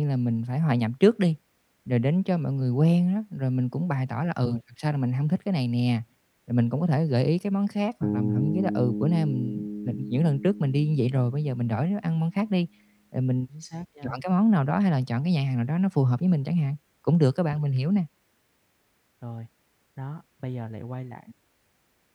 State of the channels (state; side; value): identical; both; correlation 1.00